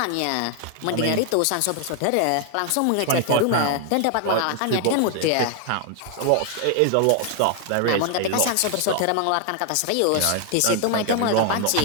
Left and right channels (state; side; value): different; both; correlation 0.00